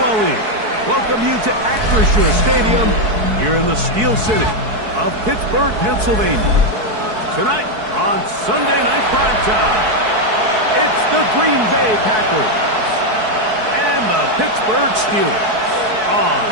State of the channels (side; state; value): left; late; 4.6 ms